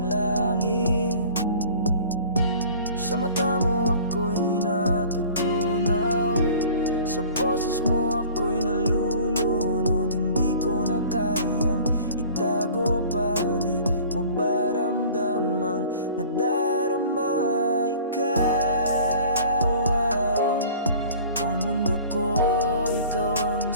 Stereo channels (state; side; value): inverted; both; correlation -0.46